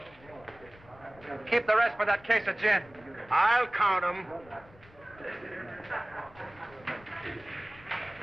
Keep the rest for that case of gin. I'll count them.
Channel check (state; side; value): noise; left; rumble, 24 dB below the sound